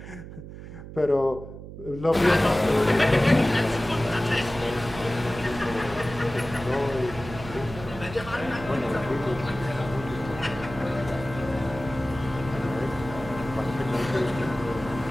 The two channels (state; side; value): noise; right; hum, 13 dB below the sound